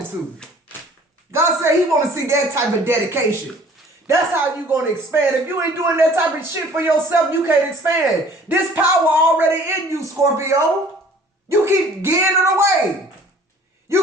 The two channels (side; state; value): both; normal; correlation 0.52